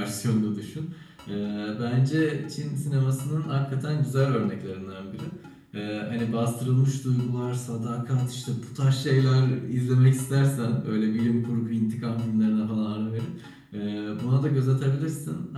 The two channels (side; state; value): both; identical; correlation 1.00